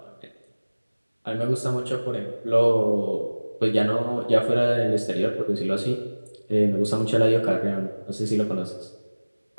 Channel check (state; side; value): inverted; both; correlation -1.00